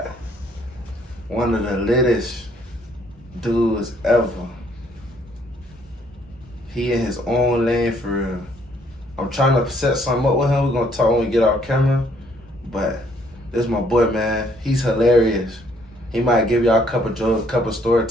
one of the littest dudes ever. He in his own lane for real. I'm trying to set something up with him. We're gonna talk when we get off camera. But this is my boy, man. He's hilarious. He might give y'all a couple jokes, a couple story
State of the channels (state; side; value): normal; both; correlation 0.66